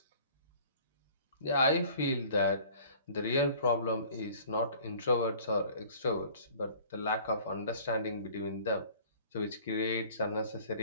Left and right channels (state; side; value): inverted; both; correlation -0.50